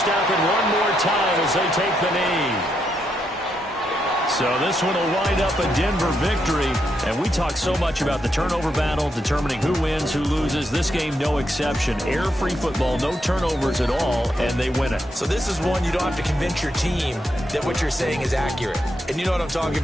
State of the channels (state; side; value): normal; both; correlation 0.81